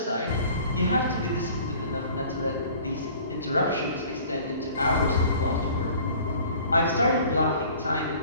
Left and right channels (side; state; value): both; inverted; correlation -0.49